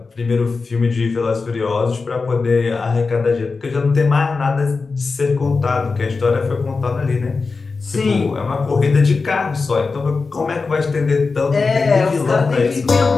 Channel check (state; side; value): quieter; right; 4.3 dB